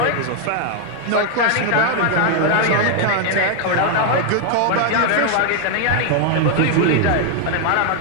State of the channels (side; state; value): both; different; correlation 0.01